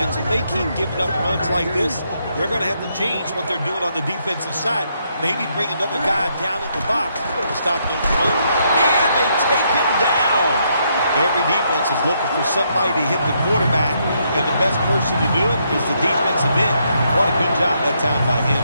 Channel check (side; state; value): both; inverted; correlation -0.75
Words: If they keep giving up runs like this, they're going to have to change what they're doing on the defensive side. Maybe bring another guy down in the box to stop those runs. And they take him down. Every defense is looking for somebody to hit the quarterback, and the best person to do it is the defensive end. What a good job that time by him.